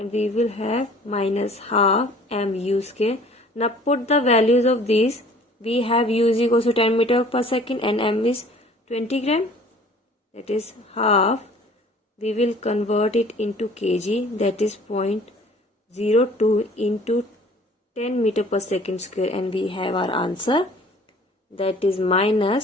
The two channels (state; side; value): normal; both; correlation 0.51